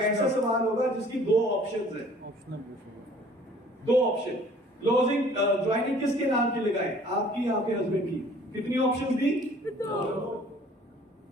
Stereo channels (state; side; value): normal; both; correlation 0.53